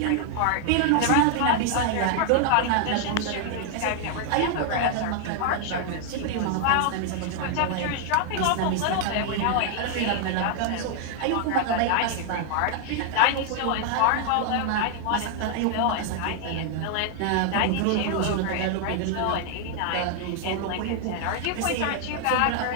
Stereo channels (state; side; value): different; both; correlation 0.00